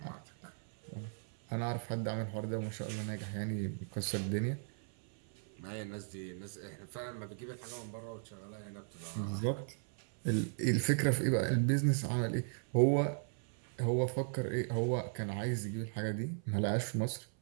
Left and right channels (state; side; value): silent; left; 53 dB below the other